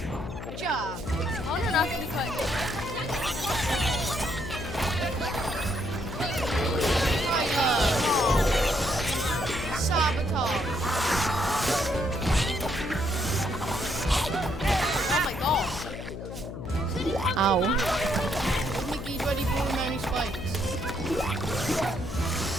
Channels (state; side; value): noise; left; hum, 8 dB below the sound